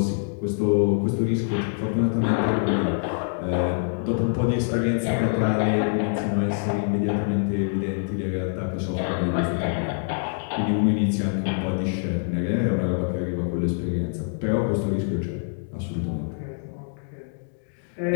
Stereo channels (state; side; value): silent; right; digital silence